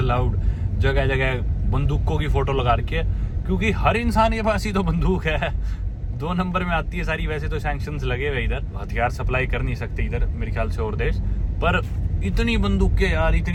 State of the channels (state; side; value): identical; both; correlation 1.00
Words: जगह जगह बंदूकों की फोटो लगा रखी है, क्योंकि हर इंसान के पास ही तो बंदूक है। 2 नंबर में आती है सारी। वैसे तो सैंक्शंस लगे हुए इधर, हथियार सप्लाई कर नहीं सकते इधर मेरे ख्याल से और देश, पर इतनी बंदूकें यार,